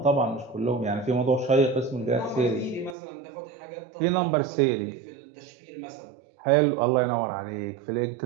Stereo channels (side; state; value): left; drops out; at 3.0 s